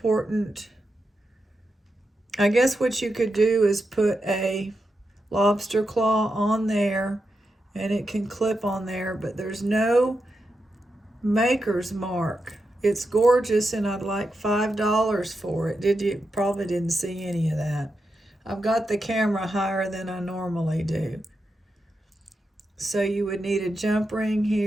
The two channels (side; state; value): both; normal; correlation 0.87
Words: I guess what you could do is put a lobster claw on there, and it can clip on there, but there's no maker's mark. It's gorgeous, and I'd like $5 for it. You probably didn't see any of that. I've got the camera higher than I normally do. So you would need a jump ring